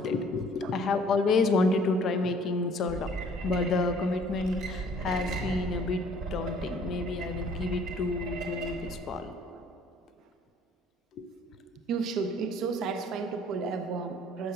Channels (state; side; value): normal; both; correlation 0.56